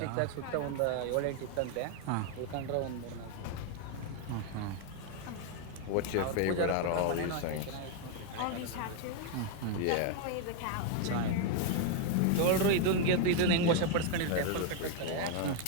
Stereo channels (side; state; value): both; different; correlation 0.01